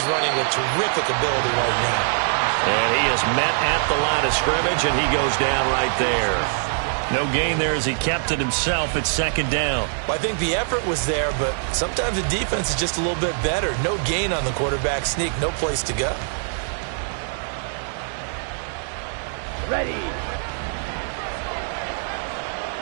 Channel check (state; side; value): silent; left; digital silence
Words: running with terrific ability right now. And he is met at the line of scrimmage, and he goes down right there. No gain there as he kept it himself at second down. Well, I think the effort was there, but sometimes the defense is just a little bit better. No gain on the quarterback sneak, no place to go. Ready.